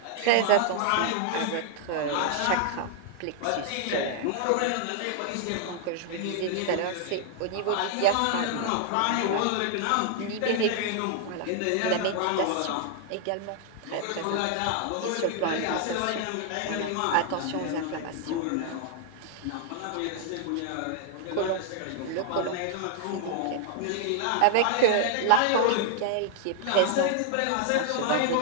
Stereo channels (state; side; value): different; both; correlation 0.00